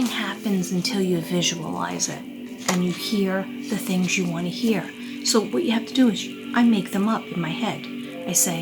happens until you visualize it and you hear the things you want to hear. So what you have to do is I make them up in my head. I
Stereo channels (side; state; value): both; identical; correlation 1.00